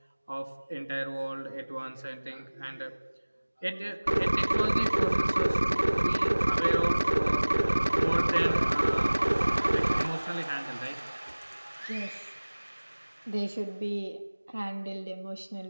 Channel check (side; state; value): both; inverted; correlation -1.00